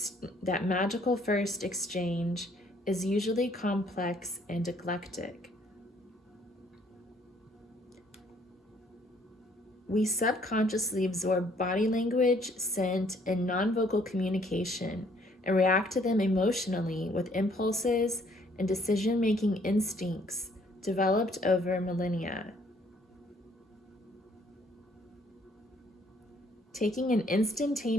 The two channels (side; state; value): both; normal; correlation 0.63